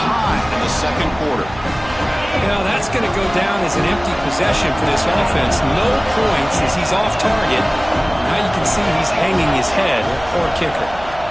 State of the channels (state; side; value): noise; right; hum, 17 dB below the sound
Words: in the 2nd quarter. Now that's going to go down as an empty possession for this offense. No points as he's off target. Now you can see he's hanging his head. Poor kicker.